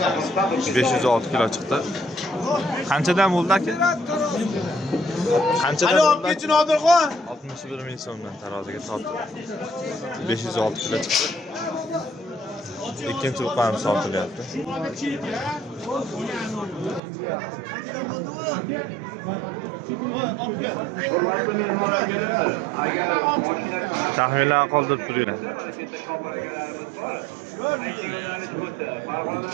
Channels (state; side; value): drops out; left; at 17.0 s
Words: $506 kilo chiqdi. Qanchadan bo'ldi aka? Qanchadan bo'ldi? 61 ming so'mdan taroziga tortdi. 506 kilo chiqdi. Ikkinchi buqamiz sotilyapti. Taxminlar qoldirib turinglar.